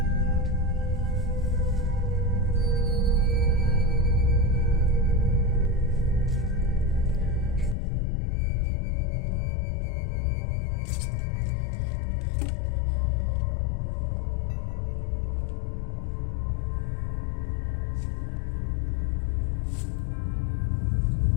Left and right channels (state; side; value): drops out; right; at 7.8 s